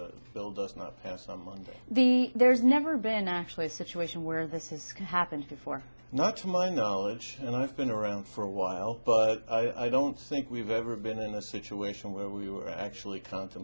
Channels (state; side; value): inverted; both; correlation -1.00